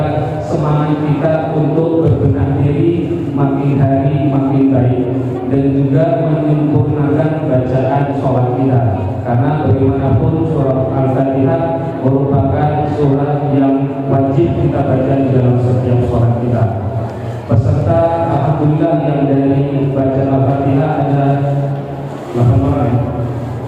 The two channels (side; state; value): both; identical; correlation 1.00